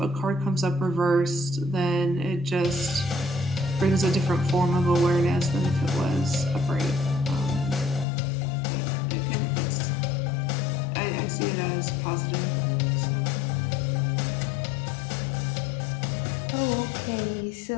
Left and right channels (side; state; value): right; drops out; at 8.1 s